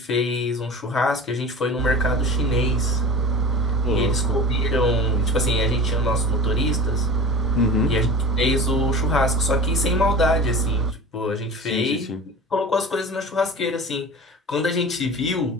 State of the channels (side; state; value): both; normal; correlation 0.35